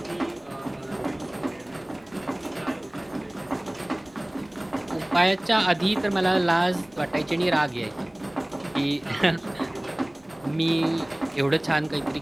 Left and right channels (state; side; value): noise; left; rumble, 29 dB below the sound